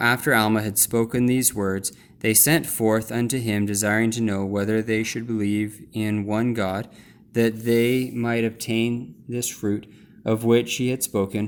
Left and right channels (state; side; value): identical; both; correlation 1.00